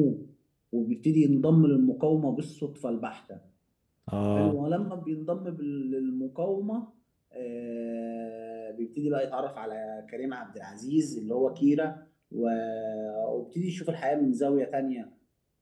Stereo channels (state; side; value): identical; both; correlation 1.00